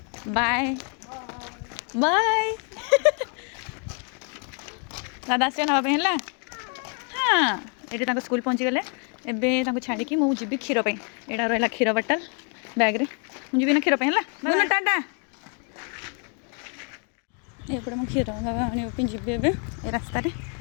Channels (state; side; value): quieter; right; 39.5 dB